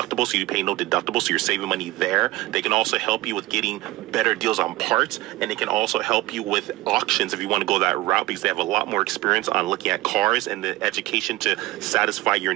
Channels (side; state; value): left; quieter; 18.2 dB